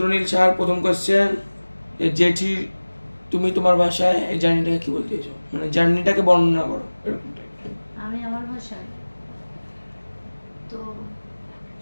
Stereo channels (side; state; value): both; inverted; correlation -1.00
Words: সাহার প্রথম কোয়েশ্চেন, জেঠি তুমি তোমার ভাষায় এই জার্নিটাকে কি বলতে চাইছো, মানে জার্নিটাকে বর্ণনা করো এরকম টাইপ। আমি আমার ভাষায় তো